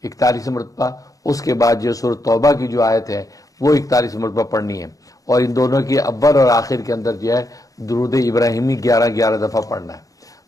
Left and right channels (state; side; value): late; right; 0.17 ms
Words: 41 مرتبہ، اس کے بعد جو سورۃ توبہ کی جو آیت ہے وہ 41 مرتبہ پڑھنی ہے. اور ان دونوں کی اول اور آخر کے اندر جو ہے درود ابراہیمی 11 دفعہ پڑھنا ہے.